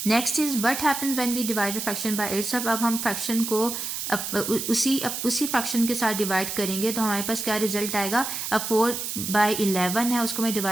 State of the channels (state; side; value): noise; right; hiss, 4 dB below the sound